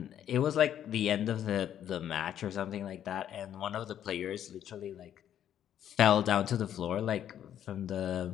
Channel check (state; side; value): quieter; right; 10.3 dB